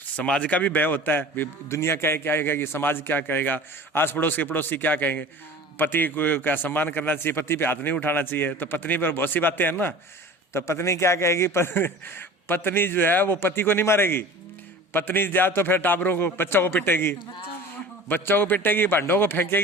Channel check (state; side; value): normal; both; correlation 0.39